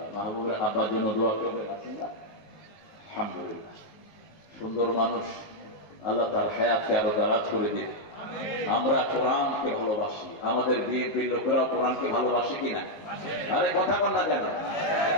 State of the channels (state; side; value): late; right; 19 ms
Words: মাহবুবের আব্বার জন্য দোয়া করবেন, আছেন না? আলহামদুলিল্লাহ, সুন্দর মানুষ, আল্লাহ তার হায়াতকে আরো দারাজ করে দিন। আমরা কোরআনকে ভালোবাসি, আমাদের বিএনপির লোকেরাও কোরআনকে ভালোবাসে কিনা? আরে কথা বল না কেন?